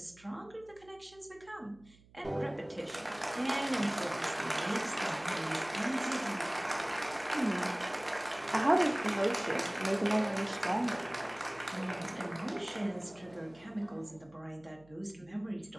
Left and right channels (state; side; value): noise; right; hum, 26 dB below the sound